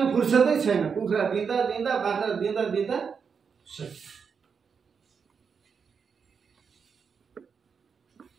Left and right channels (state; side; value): quieter; left; 6.1 dB